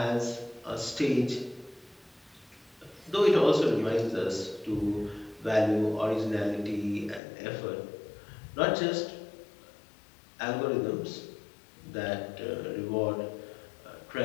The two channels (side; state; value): right; drops out; at 7.2 s